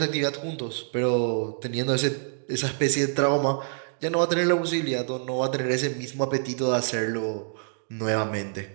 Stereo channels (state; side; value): silent; left; digital silence